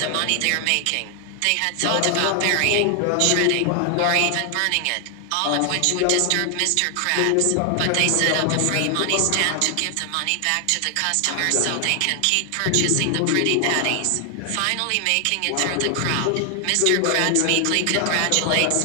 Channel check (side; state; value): both; different; correlation 0.00